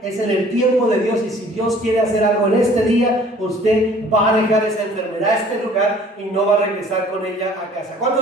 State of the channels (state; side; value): normal; both; correlation 0.53